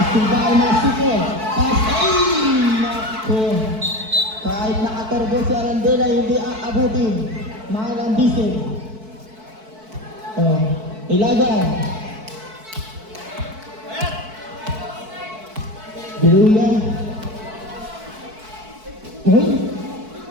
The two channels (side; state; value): left; late; 4.6 ms